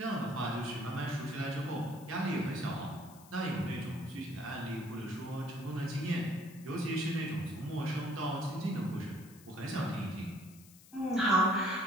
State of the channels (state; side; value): noise; left; hiss, 22 dB below the sound